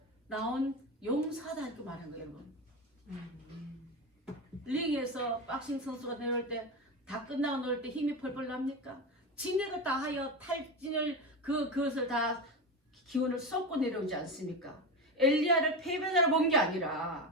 나온 용사다 이렇게 말한 거예요 여러분. 링에서 박싱 선수가 내려올 때 다 끝나고 놀 때 힘이 펄펄 납니까? 진액을 다 하여 탈진을 그것을 다 기운을 쏟고 내려오지 않습니까? 엘리야를 패배자로 본 게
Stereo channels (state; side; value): normal; both; correlation 0.20